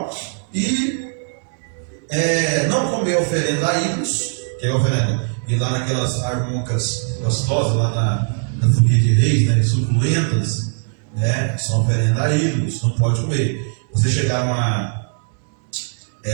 e não comer oferenda a ídolos, que é oferenda, e lá naquelas armoncas gostosas, lá na folia de reis, né, suculentas, né, são oferenda a ídolos, não pode comer. Você chegar numa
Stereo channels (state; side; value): silent; left; 63 dB below the other